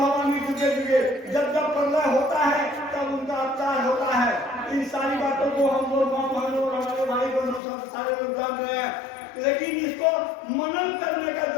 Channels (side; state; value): right; drops out; at 7.6 s